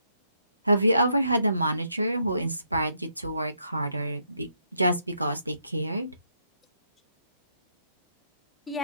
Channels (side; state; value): both; inverted; correlation -0.76